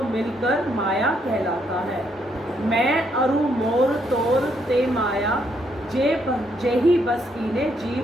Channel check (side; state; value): both; normal; correlation 0.73